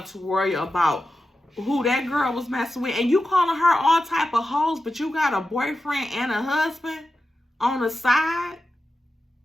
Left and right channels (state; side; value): normal; both; correlation 0.92